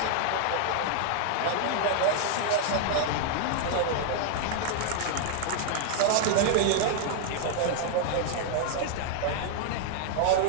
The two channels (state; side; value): different; both; correlation 0.00